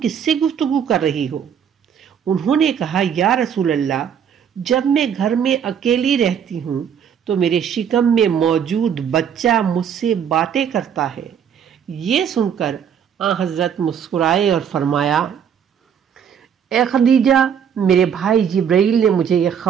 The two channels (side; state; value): left; quieter; 8.0 dB